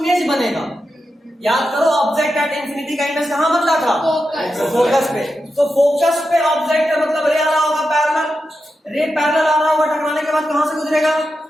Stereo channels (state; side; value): normal; both; correlation 0.89